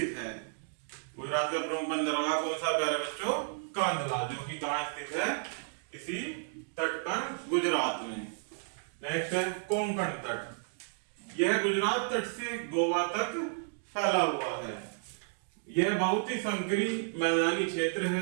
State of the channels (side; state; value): left; silent; digital silence